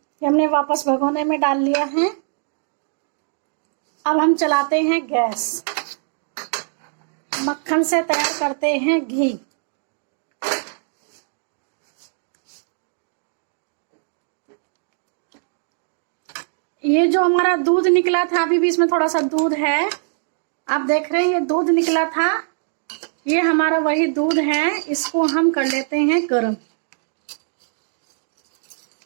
हमने वापस भगोने में डाल लिया है। अब हम चलाते हैं गैस। मक्खन से तैयार करते हैं घी। ये जो हमारा दूध निकला था, अभी भी इसमें थोड़ा सा दूध है। आप देख रहे हैं ये दूध निकला था, ये हमारा वही दूध है। इसको हम कर लेते हैं गर्म।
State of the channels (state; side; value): silent; left; digital silence